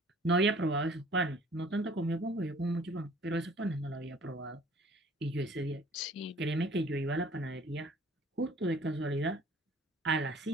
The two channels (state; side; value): normal; both; correlation 0.53